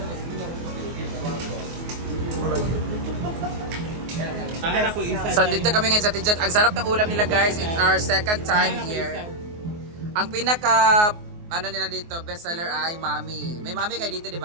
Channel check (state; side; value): late; left; 24 ms